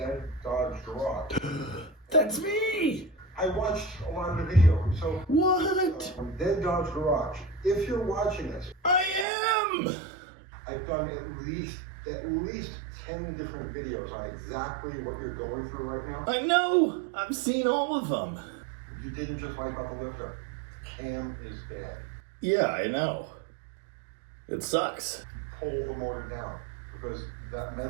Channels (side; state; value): left; drops out; at 9.2 s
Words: Dodge Garage. That's me! I watched a lot of the video. So What? Dead Dodge Garage. If you're watching this, I am! I've done at least 10 different videos on exactly what you're going through right now. I know! I've seen all of them. You didn't just wipe out the lifter. The cam is bad. Yeah, I know. It sucks. Pull the motor down because that